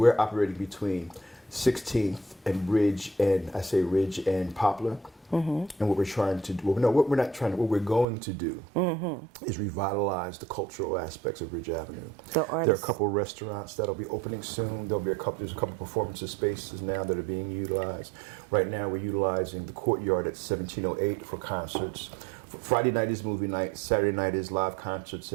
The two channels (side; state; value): left; drops out; at 8.1 s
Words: operating between 16th and Ridge and Poplar. And what we're trying to do, what we're going to do is revitalize the cultural aspects of Ridge Avenue. There are a couple of restaurants that'll be opening soon. There's a couple performance spaces now that are being utilized. Right now we're utilizing the courtyard at 1708 for concerts. Friday night is movie night, Saturday night is live concerts